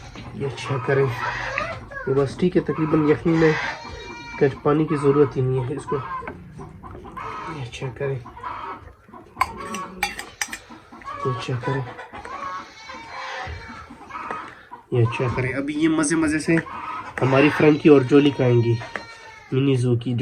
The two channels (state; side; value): identical; both; correlation 1.00